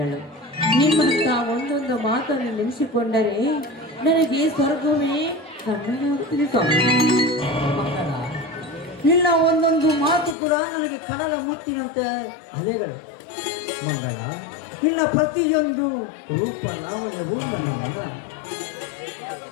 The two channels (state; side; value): drops out; right; at 10.4 s